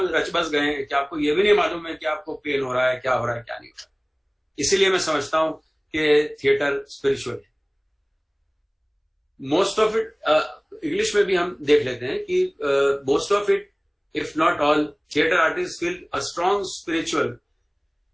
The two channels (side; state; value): both; identical; correlation 1.00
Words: बस गए हैं कि आपको ये भी नहीं मालूम है कि आपको पेन हो रहा है, क्या हो रहा है, क्या नहीं हो रहा है। इसीलिए मैं समझता हूं कि थिएटर स्पिरिचुअल है। मोस्ट ऑफ इट, इंग्लिश में भी हम देख लेते हैं कि most of it, if not all, theater artists feel a strong spiritual